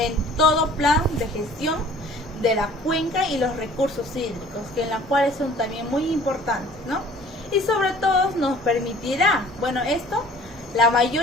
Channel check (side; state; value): both; normal; correlation 0.51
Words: todo plan de gestión de la cuenca y los recursos hídricos, que en las cuales son también muy importantes, ¿no? Y sobre todo nos permitirá, la